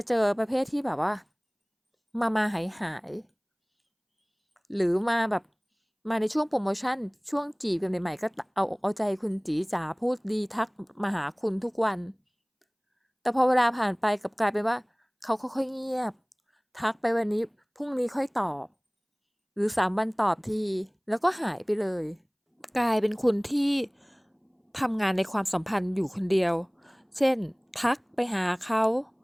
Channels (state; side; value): identical; both; correlation 1.00